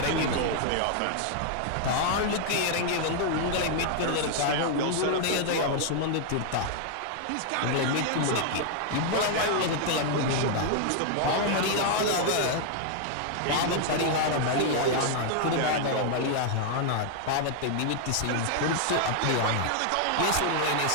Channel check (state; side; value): different; both; correlation -0.01